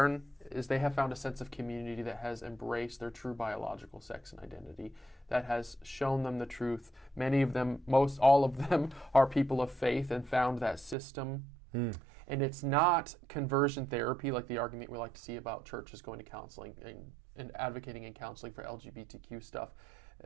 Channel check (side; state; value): left; drops out; at 11.0 s